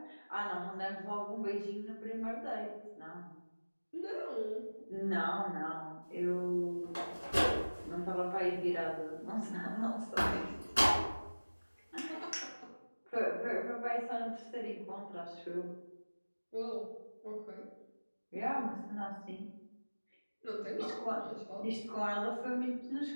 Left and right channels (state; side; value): inverted; both; correlation -1.00